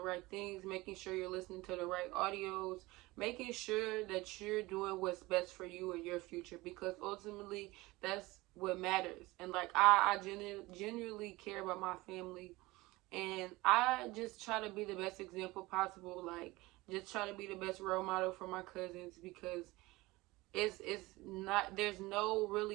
right things, making sure you're listening to the right audios, making sure that you're doing what's best for you and your future, because ultimately that's what matters. And like, I genuinely care about my family, and I just try to be the best example possible. Like, just try to be the best role model for my cousins, because it's not, there's no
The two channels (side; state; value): left; quieter; 20.9 dB